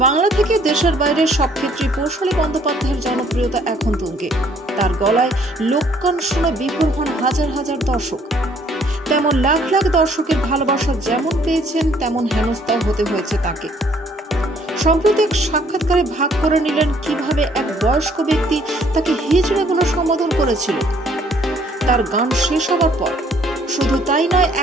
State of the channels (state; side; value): normal; both; correlation 0.62